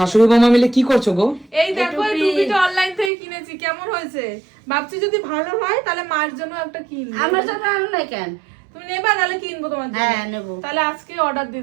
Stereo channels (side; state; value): left; drops out; at 3.1 s